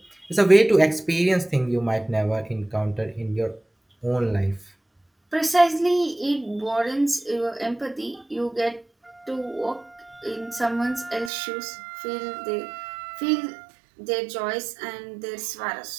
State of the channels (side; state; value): left; drops out; at 11.3 s